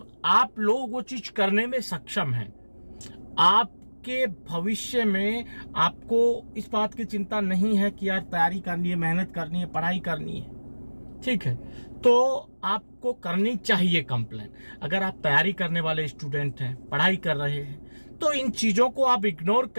आप लोग वो चीज करने में सक्षम हैं, आपके भविष्य में आपको इस बात की चिंता नहीं है कि यार तैयारी करनी है, मेहनत करनी है, पढ़ाई करनी है, ठीक है, तो आपको करनी चाहिए कंप्लेन। अगर आप तैयारी करने वाले स्टूडेंट हैं, पढ़ाई कर रहे हैं, तो इन चीजों को आप इग्नोर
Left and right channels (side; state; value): both; inverted; correlation -1.00